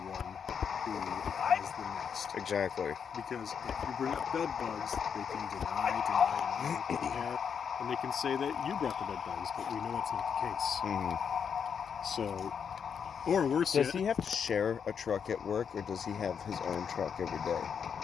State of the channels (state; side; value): quieter; right; 7.0 dB